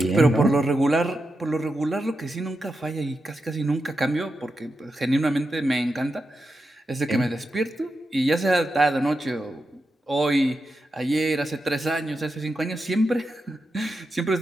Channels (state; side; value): normal; both; correlation 0.88